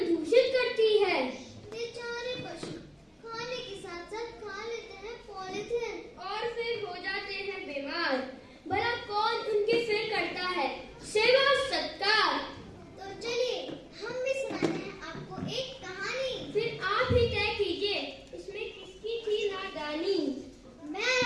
दूषित करती है। बेचारे पशु खाने के साथ साथ खा लेते हैं पॉलीथिन और फिर हो जाते हैं बीमार। भला कौन उनकी फिर करता है सेवा सत्कार। तो चलिए हम भी सुनाते हैं आपको एक कहानी। फिर आप ही तय कीजिए इसमें किसकी थी नादानी। मैं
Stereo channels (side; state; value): both; identical; correlation 1.00